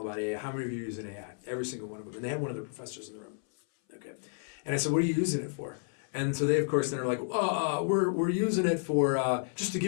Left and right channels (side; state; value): right; silent; 57 dB below the other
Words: about AI. How many of you are using AI? Every single one of them, and they had one of their professors in the room. Okay, and I said, "What are you using it for?" And so they, of course, then are like, we're using it for just to